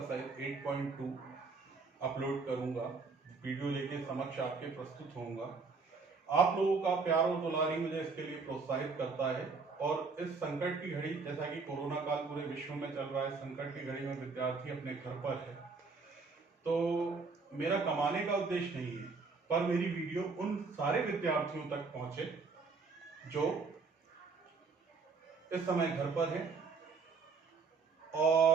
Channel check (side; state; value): left; quieter; 4.6 dB